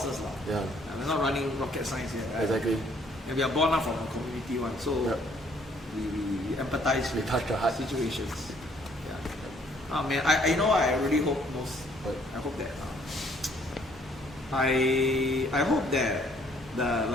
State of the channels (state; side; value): normal; both; correlation 0.63